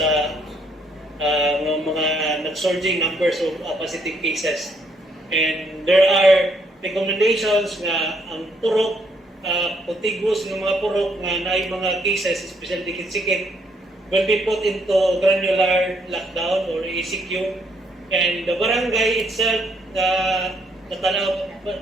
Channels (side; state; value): both; normal; correlation 0.70